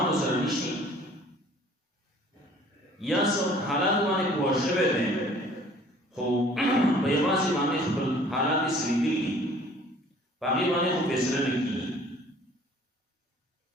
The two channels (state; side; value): normal; both; correlation 0.53